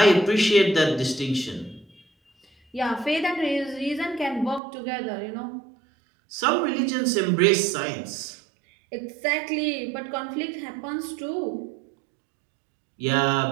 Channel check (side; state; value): left; drops out; at 4.6 s